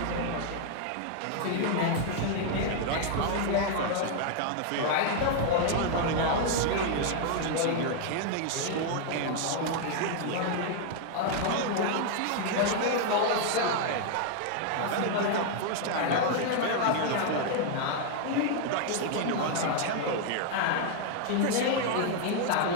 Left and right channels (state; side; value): different; both; correlation 0.00